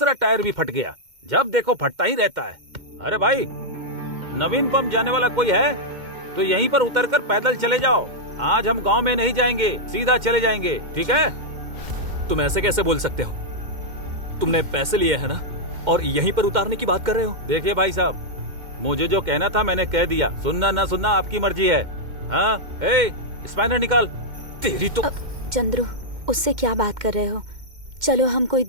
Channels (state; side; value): late; left; 2.1 ms